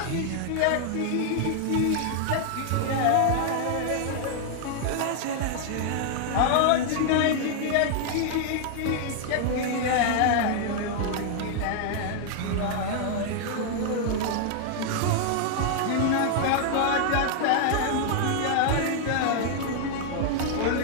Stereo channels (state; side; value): different; both; correlation 0.00